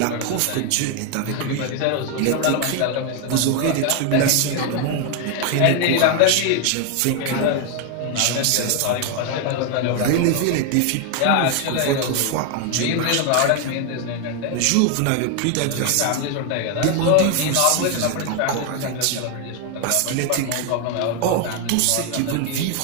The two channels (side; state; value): both; different; correlation 0.01